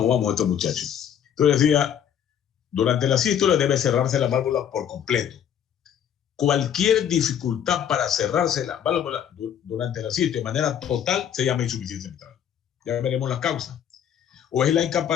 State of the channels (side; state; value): right; quieter; 9.2 dB